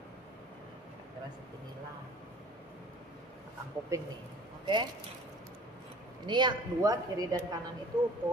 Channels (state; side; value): normal; both; correlation 0.47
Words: kira-kira seginilah belakang kuping nih, oke? Ini yang dua kiri dan kanan itu